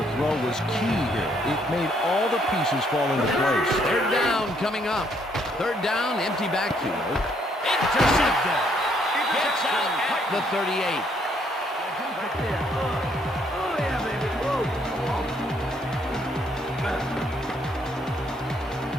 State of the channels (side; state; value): both; normal; correlation 0.69